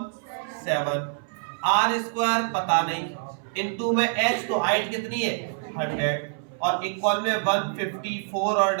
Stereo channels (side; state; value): left; silent; 61 dB below the other